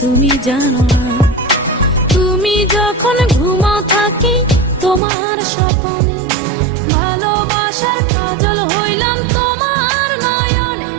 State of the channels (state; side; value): drops out; left; at 5.0 s